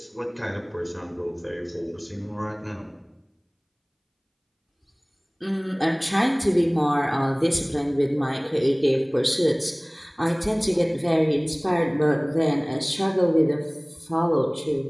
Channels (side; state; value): both; identical; correlation 1.00